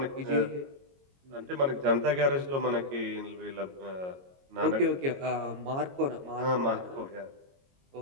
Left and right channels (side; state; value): left; late; 22 ms